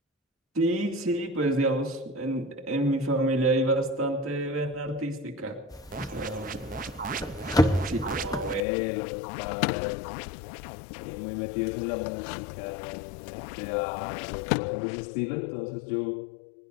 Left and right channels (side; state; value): right; drops out; at 8.6 s